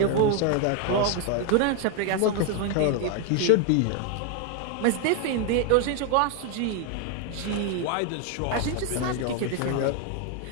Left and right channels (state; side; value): different; both; correlation 0.01